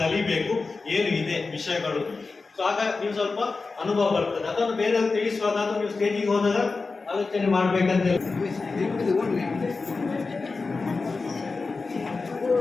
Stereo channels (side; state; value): right; quieter; 4.1 dB